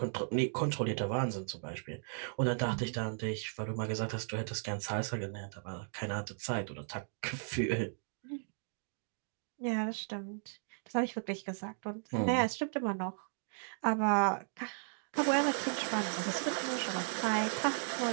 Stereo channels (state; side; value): silent; left; digital silence